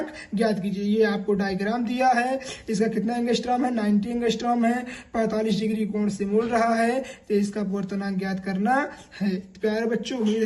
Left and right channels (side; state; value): both; identical; correlation 1.00